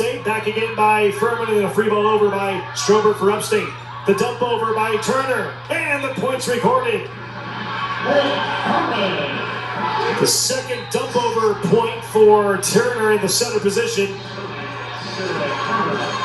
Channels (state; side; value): identical; both; correlation 1.00